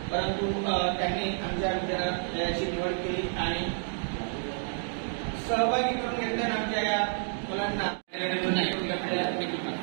परंतु त्यांनी आमच्या विद्यालयाची निवड केली आणि सहभागी करून घेतले आमच्या या मुलांना.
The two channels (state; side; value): silent; left; 58 dB below the other